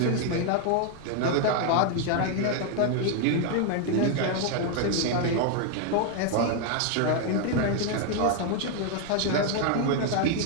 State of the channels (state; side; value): different; both; correlation 0.00